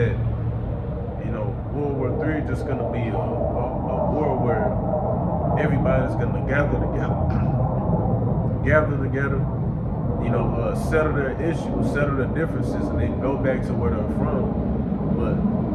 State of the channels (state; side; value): identical; both; correlation 1.00